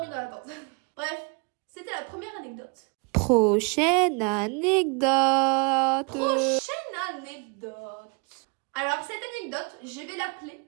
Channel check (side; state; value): left; quieter; 34.4 dB